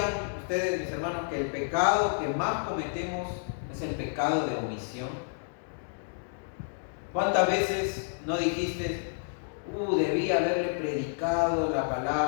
ustedes, mis hermanos, que el pecado que más cometemos es el pecado de omisión? ¿Cuántas veces no dijiste: debí haberle predicado la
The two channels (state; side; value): silent; right; digital silence